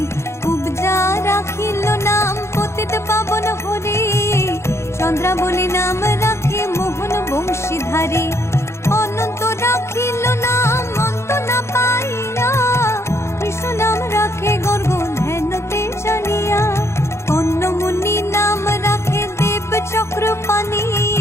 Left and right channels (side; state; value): right; late; 0.13 ms